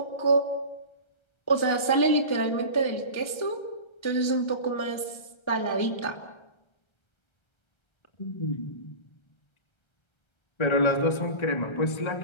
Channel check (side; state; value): right; late; 1.3 ms